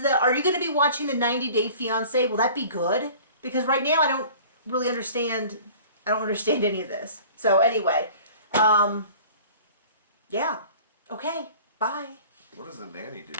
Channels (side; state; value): both; inverted; correlation -0.45